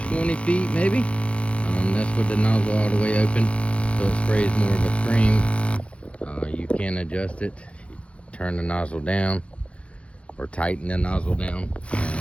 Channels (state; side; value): late; right; 0.061 ms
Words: feet maybe. That's with the nozzle all the way open, so it sprays more of a stream. You can adjust it, turn the nozzle down or tighten the nozzle down,